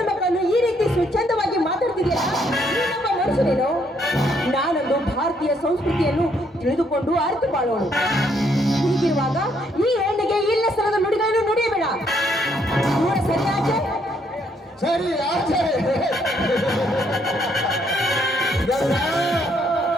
ಮಕ್ಕಳನ್ನು ಈ ರೀತಿ ಸ್ವಚ್ಛಂದವಾಗಿ ಮಾತಾಡ್ತಿದೆಯಲ್ಲ, ನೀನೊಬ್ಬ ಮನುಷ್ಯನೇನು? ನಾನೊಂದು ಭಾರತೀಯ ಸಂಸ್ಕೃತಿಯನ್ನು ತಿಳಿದುಕೊಂಡು ಅರಿತು ಬಾಳೋಣ. ಹೀಗಿರುವಾಗ ಈ ಹೆಣ್ಣಿಗೆ ಇಲ್ಲ ಸ್ಥಳದ ನುಡಿಗಳನ್ನು ನುಡಿಯಬೇಡ. ದೂರ ಸರಿ ಆಚೆ. ಸರಿ ಆಚೆ.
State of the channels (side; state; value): both; normal; correlation 0.70